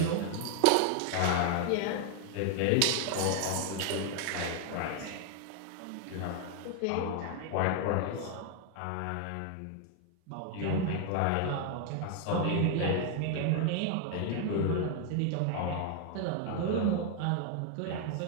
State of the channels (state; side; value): different; both; correlation 0.00